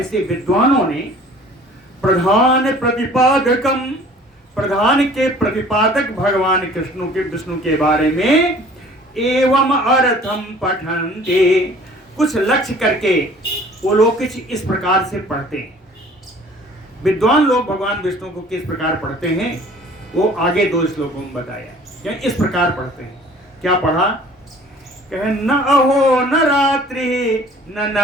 विद्वानों ने प्रधान प्रतिपादकम, प्रधान के प्रतिपादक भगवान कृष्ण के, विष्णु के बारे में एवं अर्थम पठन्ते, कुछ लक्ष्य करके वो लोग कुछ इस प्रकार से पढ़ते हैं। विद्वान लोग भगवान विष्णु को किस प्रकार पढ़ते हैं वो आगे 2 श्लोकों में बताया। क्या इस प्रकार पढ़ते हैं? क्या पढ़ा? कहे न अहो न रात्रि न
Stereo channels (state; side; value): normal; both; correlation 0.50